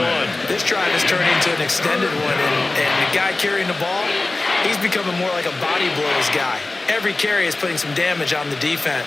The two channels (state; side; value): quieter; right; 3.2 dB